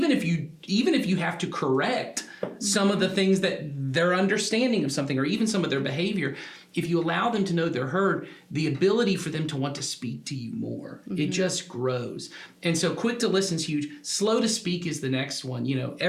if you have to correct some of the things that their understanding of something, or even some of their behavior, if you allow them to know they're heard, the ability for them to want to speak to you more, it just grows. And so quick to listen is huge. Slow to speak is the next one.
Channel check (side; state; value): both; identical; correlation 1.00